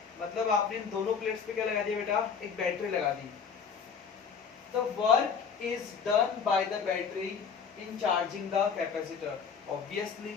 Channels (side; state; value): right; quieter; 6.3 dB